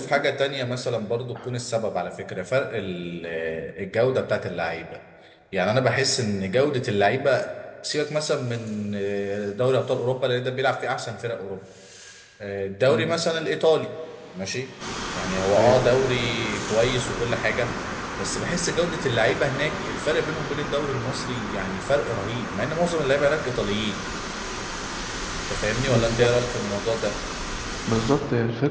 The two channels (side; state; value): both; identical; correlation 1.00